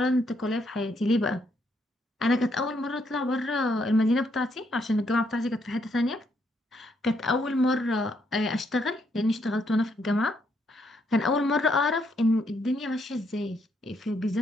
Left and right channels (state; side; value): normal; both; correlation 0.74